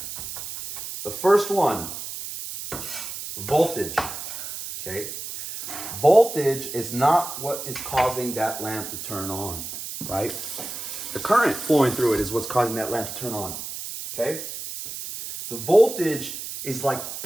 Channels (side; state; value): right; noise; hiss, 8 dB below the sound